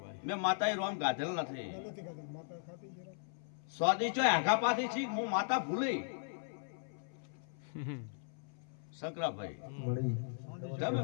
મેં માતાએ રોમ ગાધેલ નથી. સ્વાદી ચોય આઘા પાછી છી હું માતા ભૂલી શંકરાભાઈ મળી તમે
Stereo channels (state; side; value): silent; right; 53 dB below the other